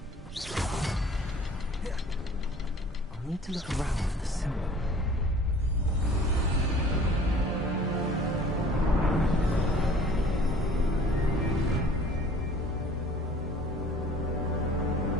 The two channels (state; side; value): normal; both; correlation 0.49